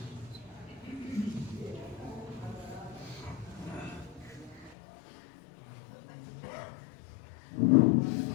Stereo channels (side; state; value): right; drops out; at 4.8 s